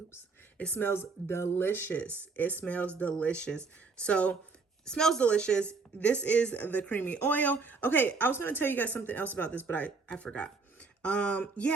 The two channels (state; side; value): quieter; left; 4.4 dB